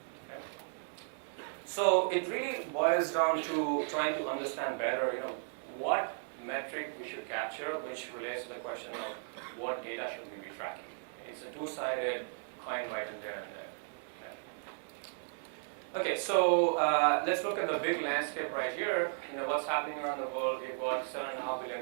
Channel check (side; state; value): left; silent; digital silence